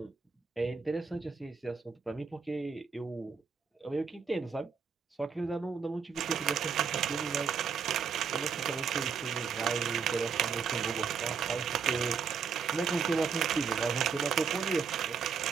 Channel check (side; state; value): left; quieter; 6.0 dB